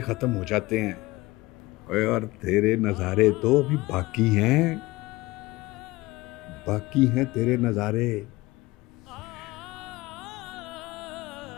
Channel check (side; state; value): right; quieter; 20.5 dB